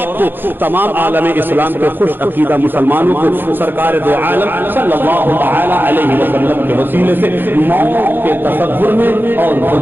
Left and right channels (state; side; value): late; left; 0.097 ms